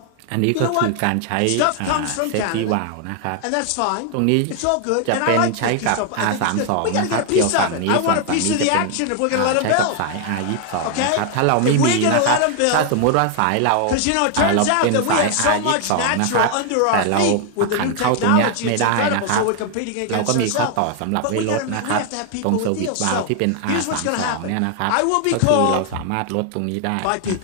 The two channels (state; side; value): different; both; correlation 0.00